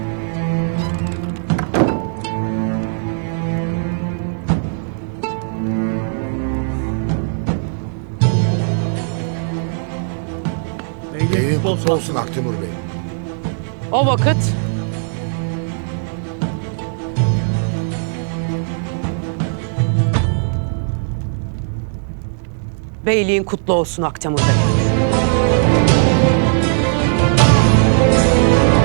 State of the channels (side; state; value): left; silent; 65 dB below the other